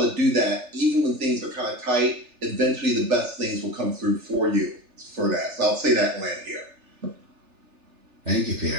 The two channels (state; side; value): late; left; 3.4 ms